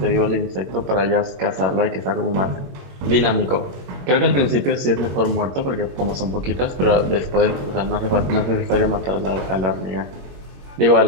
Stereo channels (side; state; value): left; late; 21 ms